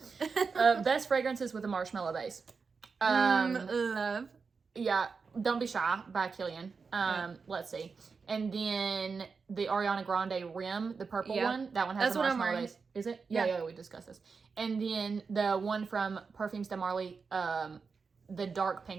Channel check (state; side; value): quieter; left; 5.0 dB